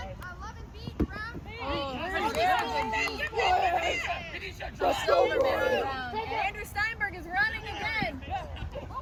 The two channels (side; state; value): both; identical; correlation 1.00